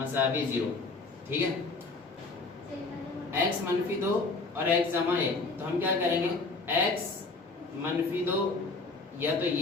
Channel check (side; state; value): right; quieter; 3.7 dB